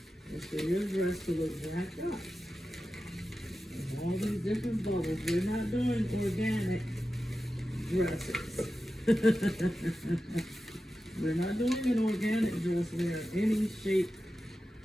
is for your dress to look jacked up. With all these different bubbles. We're not doing organic dresses. We're not doing an organic dress where any shape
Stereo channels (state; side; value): normal; both; correlation 0.92